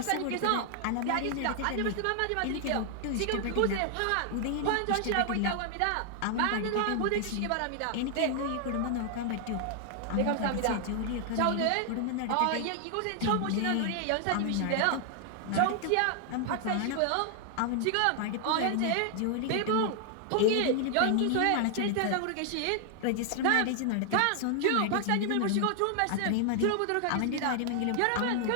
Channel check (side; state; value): both; different; correlation 0.00